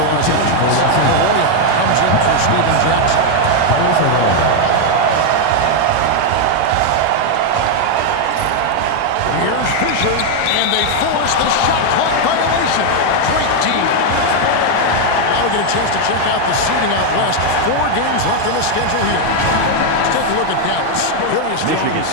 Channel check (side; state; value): both; different; correlation 0.01